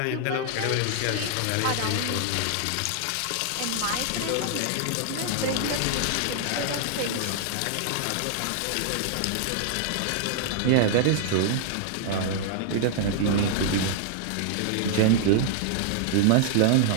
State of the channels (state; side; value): different; both; correlation -0.01